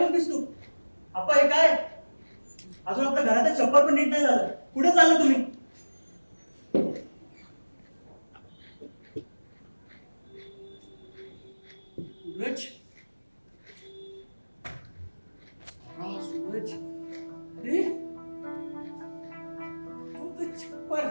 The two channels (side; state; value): both; inverted; correlation -1.00